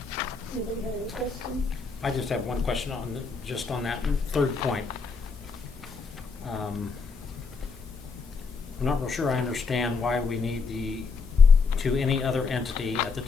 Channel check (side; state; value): right; quieter; 4.8 dB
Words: Anybody have any questions? I just have one question on just on that third point. I'm not real sure I understand why we need to any other entity at the